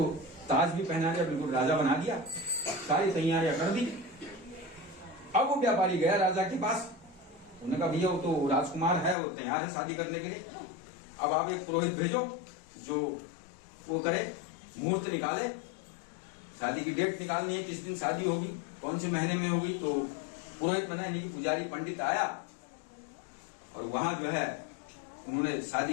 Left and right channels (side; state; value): right; drops out; at 9.2 s